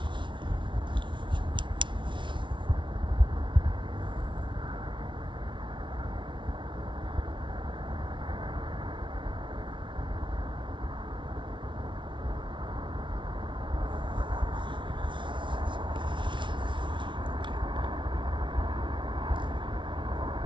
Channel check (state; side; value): late; left; 0.24 ms